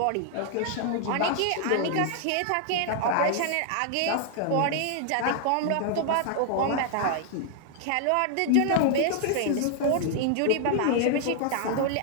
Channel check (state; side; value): different; both; correlation 0.00